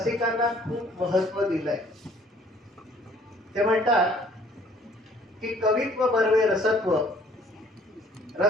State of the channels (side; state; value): both; normal; correlation 0.57